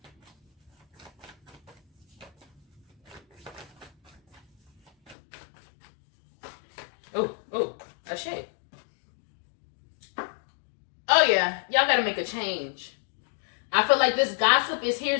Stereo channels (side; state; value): right; drops out; at 5.2 s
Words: Oh, a shade. Oh yeah, y'all gotta make a change. I feel like this gossip is here